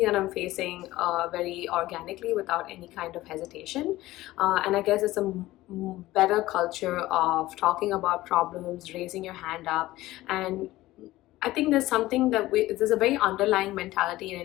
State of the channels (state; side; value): quieter; right; 17.1 dB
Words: that I'm facing very organically without any kind of hesitation. And I guess it's a better culture of talking about problems, raising your hand up, and I think there's something there's a very underlying mentality in